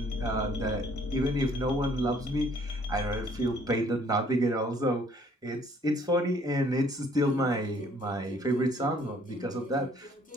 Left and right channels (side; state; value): both; normal; correlation 0.60